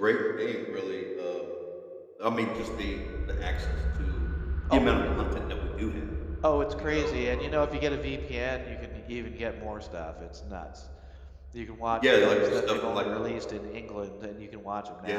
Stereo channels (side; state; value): both; identical; correlation 1.00